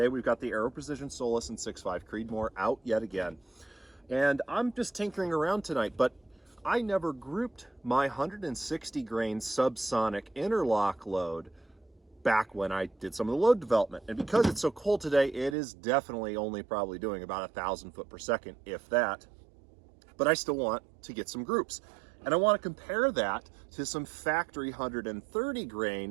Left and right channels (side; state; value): left; drops out; at 15.6 s